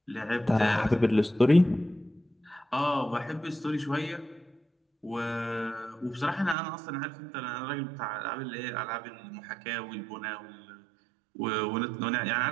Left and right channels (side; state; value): left; drops out; at 6.6 s